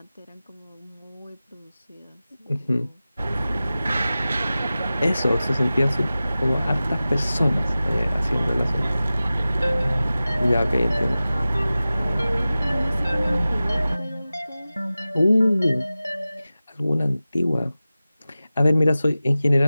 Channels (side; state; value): both; inverted; correlation -0.96